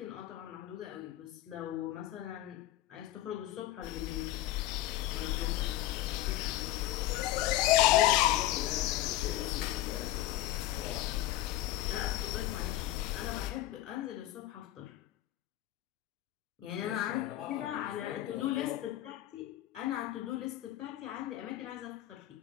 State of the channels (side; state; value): right; quieter; 14.9 dB